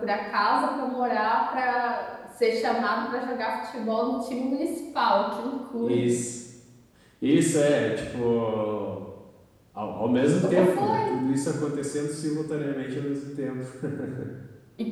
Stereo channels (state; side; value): identical; both; correlation 1.00